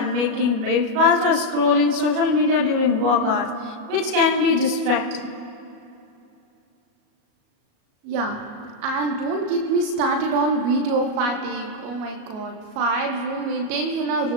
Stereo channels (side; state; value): left; late; 37 ms